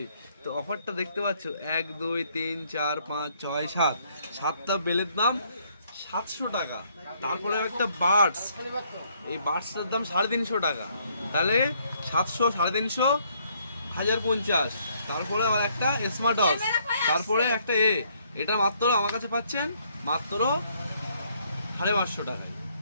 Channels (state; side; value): inverted; both; correlation -0.68